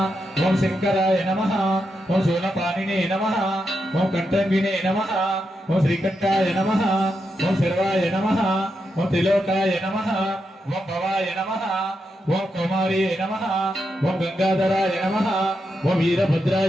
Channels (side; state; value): both; normal; correlation 0.85